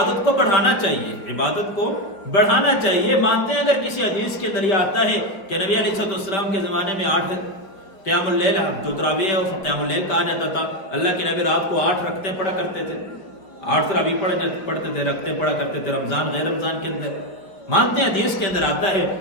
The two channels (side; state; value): right; late; 4.9 ms